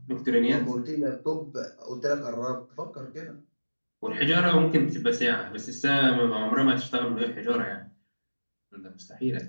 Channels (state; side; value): inverted; both; correlation -1.00